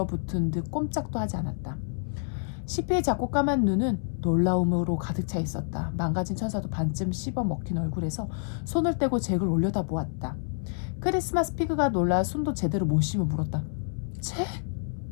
듯 꼼짝도 하지 않았다. 시피의 작고 까만 눈은 놀라움으로 가득 차 있었다. 망가진 천사도 반쯤 씹어 먹힌 얼굴에서 손을 떼고 잭을 올려다보았다. 크리스마스 피그가 놀라 숨도 제대로 못 쉬며 물었다. 잭?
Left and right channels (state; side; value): silent; right; 59 dB below the other